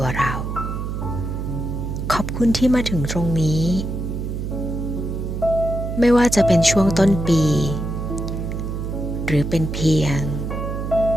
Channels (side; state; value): right; noise; hum, 4 dB below the sound